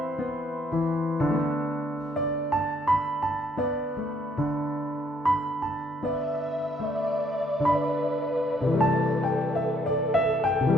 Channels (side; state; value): both; normal; correlation 0.68